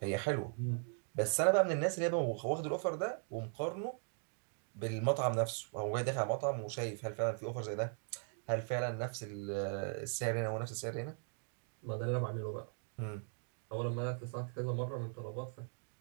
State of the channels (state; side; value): silent; left; 52 dB below the other